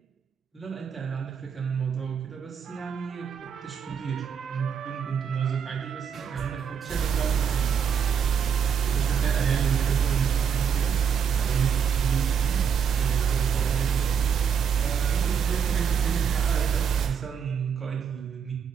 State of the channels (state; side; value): quieter; left; 7.4 dB